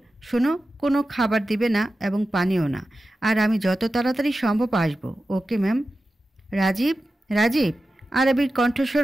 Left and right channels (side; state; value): both; normal; correlation 0.93